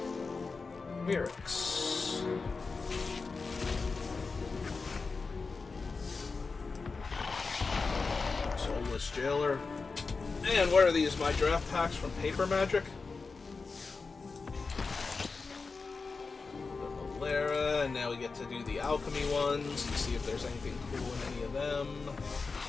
Mirrex. Soulless Jailer. And what are these? My draft packs from Paper Magic? Lara, and now we get to do the alchemy ones and see if there's anything cool in any of them.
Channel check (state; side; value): quieter; right; 4.4 dB